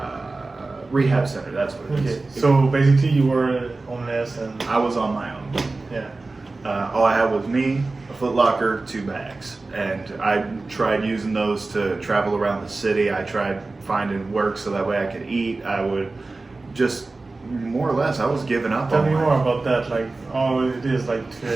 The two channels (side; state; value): left; quieter; 3.4 dB